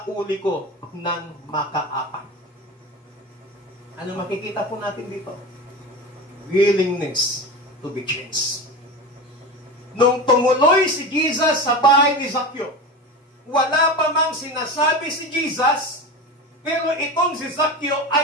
ko ng makaapak. Ano makikita po natin dito? Willingness to be changed. Nung tumuloy si Jesus sa bahay ni Zacchaeus, wala pa mang sinasabi si Jesus, pero itong si Zacchaeus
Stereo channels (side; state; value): both; normal; correlation 0.26